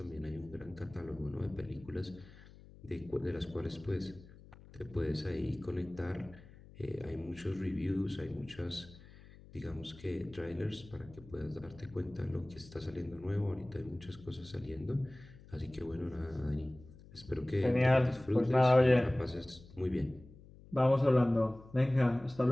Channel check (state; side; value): noise; left; hum, 20 dB below the sound